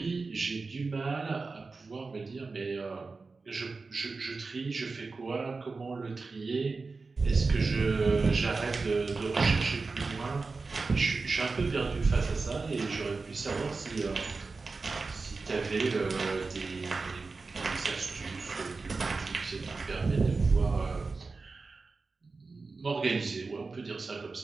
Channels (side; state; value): left; quieter; 4.1 dB